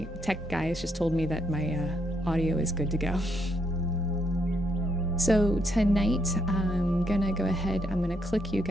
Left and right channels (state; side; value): normal; both; correlation 0.75